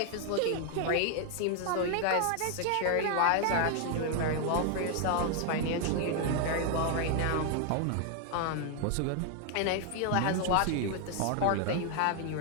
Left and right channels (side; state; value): both; different; correlation 0.00